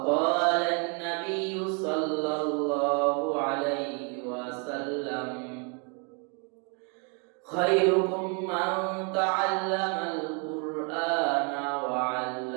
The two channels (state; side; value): quieter; left; 36.3 dB